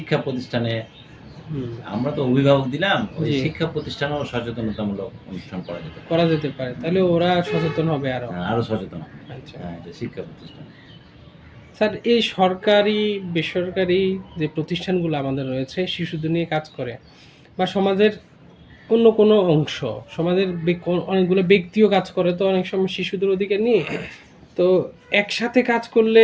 প্রতিষ্ঠানে হুম, আমরা তো অভিভাবক দিলাম, ওই জি। শিক্ষা প্রতিষ্ঠানেও সচেতনতামূলক অনুষ্ঠান করা যেতে পারে। করা যেতে পারে। তাহলে ওরা সচেতন হবে আরো। হ্যাঁ, আরো সচেতন হবে। আচ্ছা। হ্যাঁ এটা শিক্ষা প্রতিষ্ঠান। স্যার এই সরকারি, বেসরকারি যে প্রতিষ্ঠানগুলো আমাদের রয়েছে শিশুদের নিয়ে কাজ করে বা সমাজের অন্য কোনো অংশ, সমাজের অনেকগুলো ব্যক্তিও কাজ করে তো অনেক সময় শিশুদের অধিকার নিয়ে। তো একসাথে কাজ করলে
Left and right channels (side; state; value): both; identical; correlation 1.00